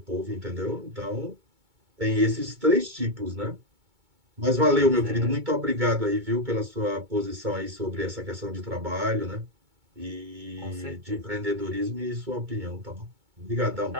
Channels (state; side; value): late; left; 2.2 ms